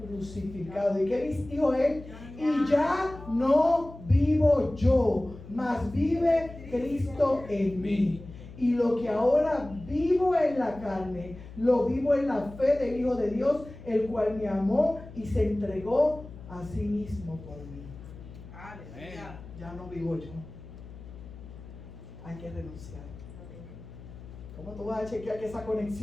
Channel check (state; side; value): noise; left; hum, 16 dB below the sound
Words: crucificado. ¿Y qué dijo él? Y ya no vivo yo, mas vive Cristo en mí. Y lo que ahora vivo en la carne, lo vivo en la fe del Hijo de Dios, el cual me amó y se entregó a sí mismo por mí. Aleluya. Ya no vivo yo. Hay que renunciar. ¿Cómo tú vas a chequear que esa